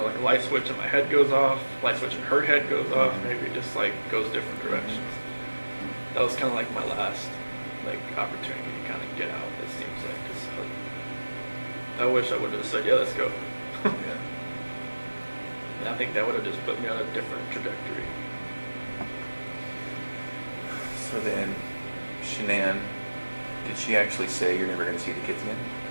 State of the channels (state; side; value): inverted; both; correlation -1.00